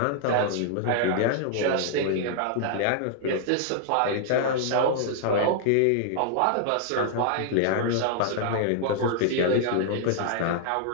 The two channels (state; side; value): different; both; correlation -0.01